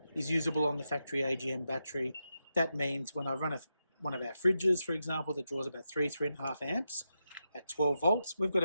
is usable on the factory AGM battery. That means when I run one of our fridges, for example, that draws about 3.5 amps at 12 volts, we've got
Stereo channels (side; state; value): both; inverted; correlation -0.87